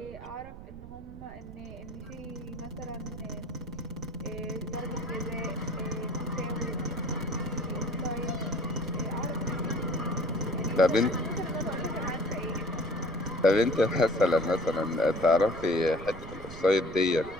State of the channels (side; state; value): right; noise; rumble, 14 dB below the sound